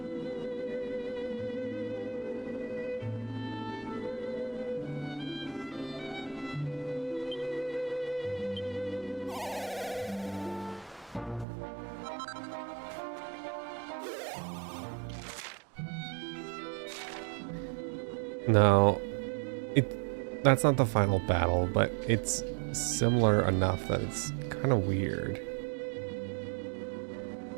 No, that's not the final battle, but it's similar enough that it's kind of weird.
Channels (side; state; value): left; drops out; at 11.5 s